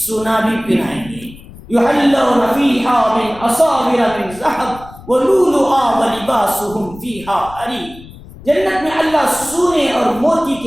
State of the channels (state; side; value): noise; left; rumble, 19 dB below the sound